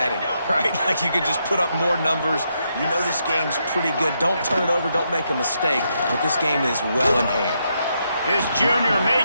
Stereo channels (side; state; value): both; inverted; correlation -0.80